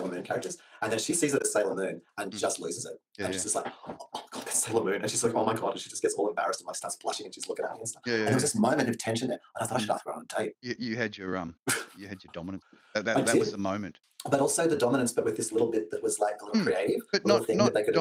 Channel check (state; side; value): identical; both; correlation 1.00